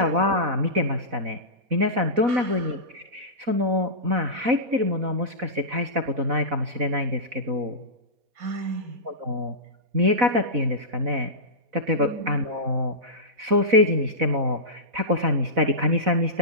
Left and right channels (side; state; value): left; late; 4.0 ms